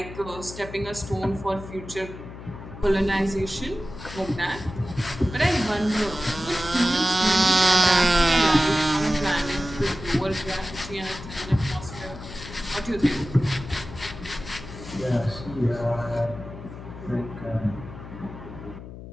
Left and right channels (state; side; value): noise; left; hum, 13 dB below the sound